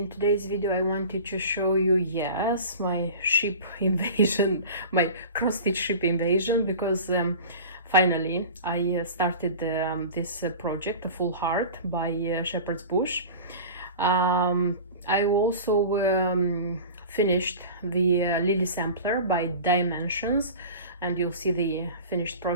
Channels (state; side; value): inverted; both; correlation -0.36